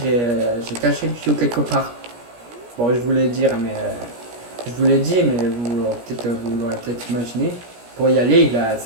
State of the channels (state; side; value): late; left; 17 ms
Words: j'ai caché le tuyau quelque part. Bon, je vous l'ai dit, je vous l'ai dit, mais vous l'aurez peut-être imaginé. Pour y aller,